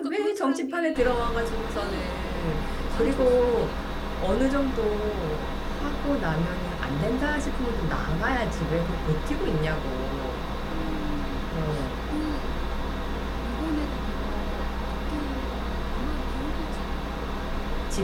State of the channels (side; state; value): both; identical; correlation 1.00